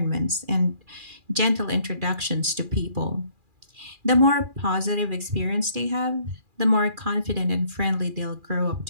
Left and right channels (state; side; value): late; left; 2.4 ms